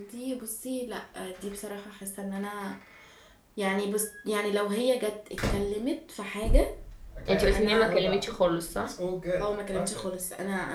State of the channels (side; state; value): both; identical; correlation 1.00